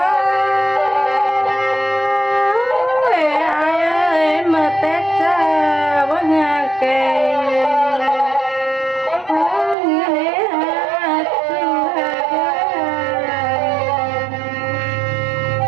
Ai ơi mà Tết quá nhà kề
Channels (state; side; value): drops out; left; at 9.8 s